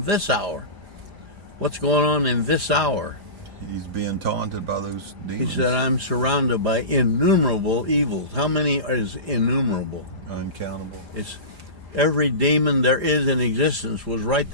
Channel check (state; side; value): late; left; 4.9 ms